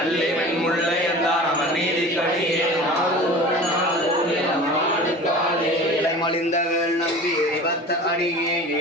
அல்லிவன் முல்லை என்றார் அவன் நீதி கடியே மலிந்தகள் நம்பி எரிபத்த அடியே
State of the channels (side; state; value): both; normal; correlation 0.38